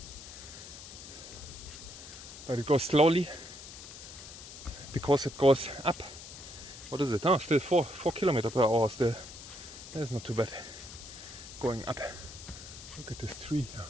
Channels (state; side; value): noise; left; hiss, 13 dB below the sound